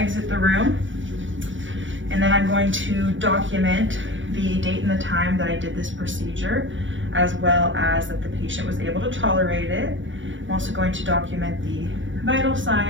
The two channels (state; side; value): late; left; 0.56 ms